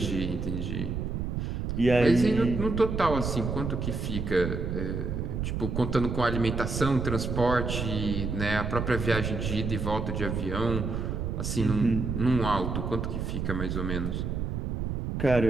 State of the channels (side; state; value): right; noise; rumble, 2 dB below the sound